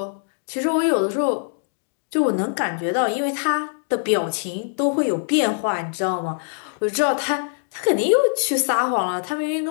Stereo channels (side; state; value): right; silent; 63 dB below the other